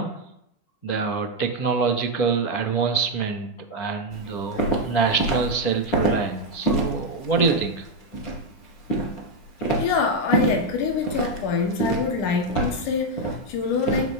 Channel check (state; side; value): late; right; 9.9 ms